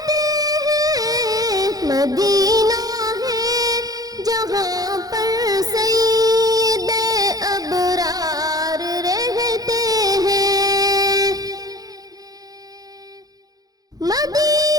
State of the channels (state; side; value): late; left; 0.18 ms